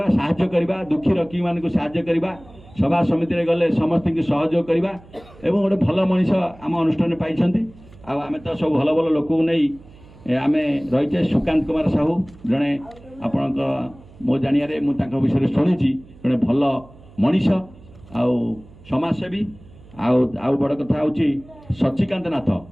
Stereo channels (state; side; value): noise; right; hum, 23 dB below the sound